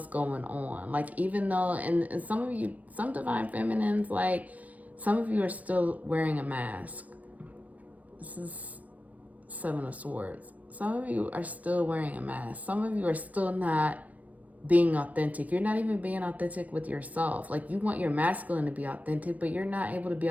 going on. Like, even though, and some of you, some divine feminines, like, some of you are still wearing a mask. This is 7 of Swords. Some of you are still wearing a mask. Some of you are still not being authentic. You're not even being authentic with yourself. Like, you want your masculine to be authentic, but you're not able to be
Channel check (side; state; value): left; late; 0.071 ms